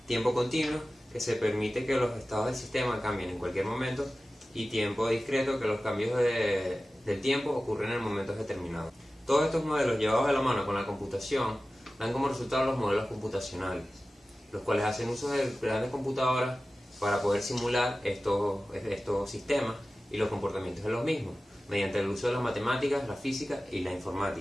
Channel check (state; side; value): normal; both; correlation 0.96